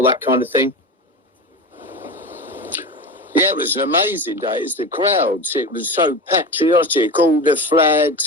that kind of thing. Yeah, it was an amazing day. It's the crowds. It was so patriotic. All the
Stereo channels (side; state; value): both; normal; correlation 0.26